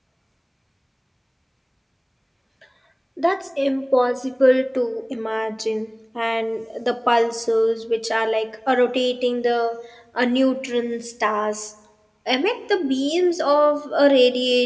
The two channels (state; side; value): identical; both; correlation 1.00